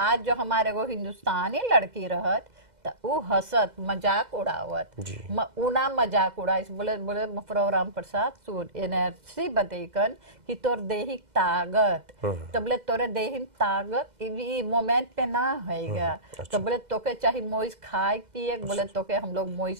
जो हमारे वो हिंदुस्तानी लड़की रहत तो वो हंसत मजाक उड़ावत उना मजाक उड़ाइस बोले बोले मफरो राम प्रसाद सुन एनर्जी बतेकन कि तोर देही ताकत तो बोले तोरे देही ताकत ई मोमेंट पे ना होएगा। तो बोले तोके चाहे मोइस खाए पिए बोले तोके हम लोग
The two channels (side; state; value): left; late; 2.0 ms